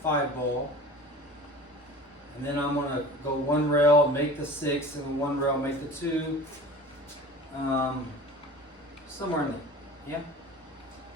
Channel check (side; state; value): both; normal; correlation 0.40